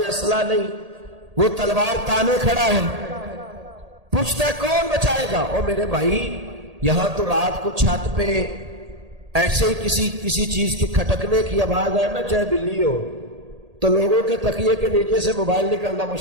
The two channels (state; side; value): late; left; 1.8 ms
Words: اسلحہ نہیں، وہ تلوار تانے کھڑا ہے، پوچھتا ہے کون بچائے گا؟ او میرے بھائی، یہاں تو رات کو چھت پہ ایسے ہی کسی چیز کے کھٹکنے کی آواز ہے نا، چاہے بلی ہو، تو لوگوں کے تکیے کے نیچے سے موبائل نکلنا